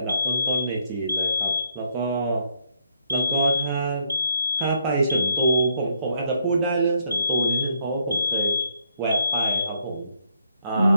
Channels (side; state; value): both; inverted; correlation -0.71